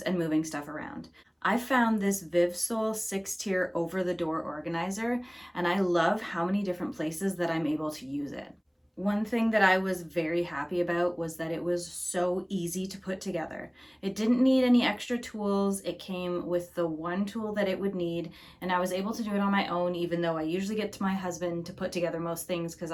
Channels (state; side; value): identical; both; correlation 1.00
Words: and moving stuff around. I found this VIVSOL 6-tier over-the-door organizer, and I love how many different places that I'm able to use it. One thing that I was very happy about was that it was so easy to put together. It didn't need any extra tools. It came with the one tool that it would need, and I was able to do it on my own, even though I usually get to my husband to put together most things because